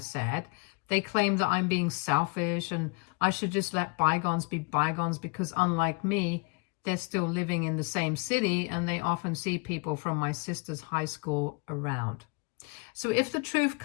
They claim that I'm being selfish and I should just let bygones be bygones because, unlike me, they're still living in the same city and they often see people from my sister's high school around. So if the truth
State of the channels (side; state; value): right; quieter; 31.7 dB